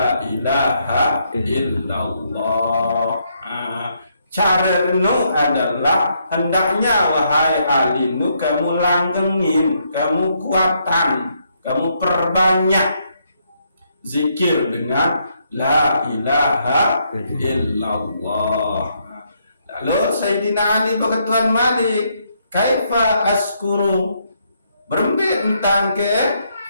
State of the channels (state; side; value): inverted; both; correlation -0.75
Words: ilaha illallah. Caranu adalah hendaknya wahai alinu kamu langgengin, kamu kuatan, kamu perbanyak zikir dengan la ilaha illallah. Lalu Sayyidina Ali berketuan Malik, kaifa askuru, berembik tentang ke